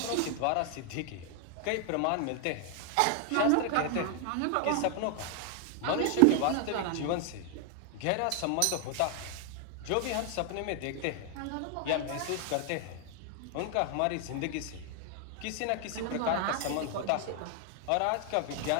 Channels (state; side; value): different; both; correlation 0.00